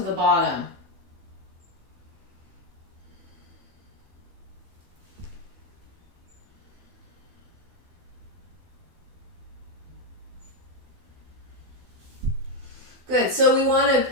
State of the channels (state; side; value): late; left; 12 ms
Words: the bottom. Good, so we want